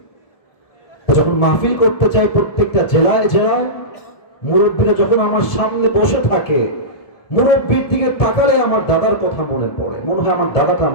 যখন মাহফিল করতে চাই প্রত্যেকটা জেলায় জেলায়, মুরব্বীরা যখন আমার সামনে বসে থাকে, মুরব্বীর দিকে তাকালে আমার দাদার কথা মনে পড়ে, মনে হয় আমার দাদাটা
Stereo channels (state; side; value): late; right; 1.7 ms